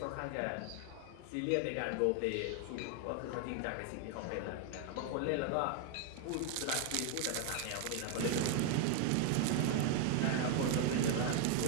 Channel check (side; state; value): both; different; correlation 0.00